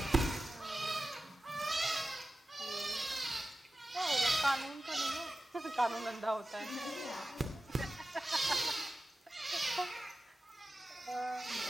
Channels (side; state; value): both; normal; correlation 0.94